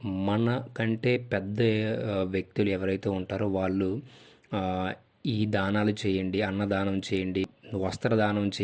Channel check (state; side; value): identical; both; correlation 1.00